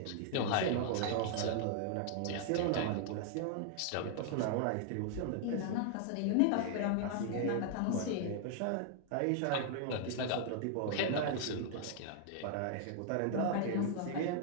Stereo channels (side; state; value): both; different; correlation -0.01